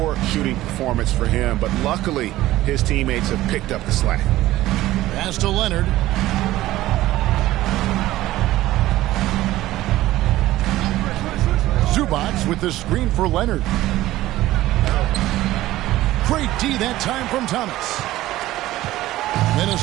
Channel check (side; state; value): left; quieter; 15.9 dB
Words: shooting performance for him. But luckily, his teammates have picked up the slack. Pass to Leonard. Zubac with the screen for Leonard. Great D that time from Thomas.